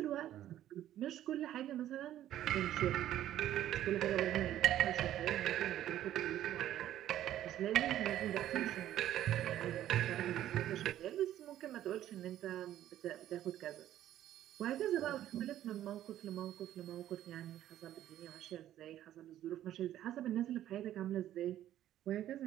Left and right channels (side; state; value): left; quieter; 12.4 dB